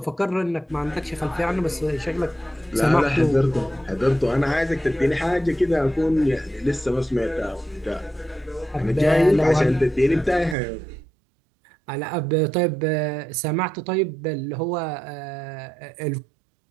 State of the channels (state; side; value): drops out; left; at 10.6 s